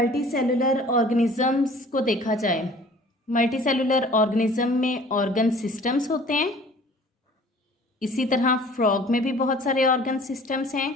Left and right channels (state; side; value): normal; both; correlation 0.49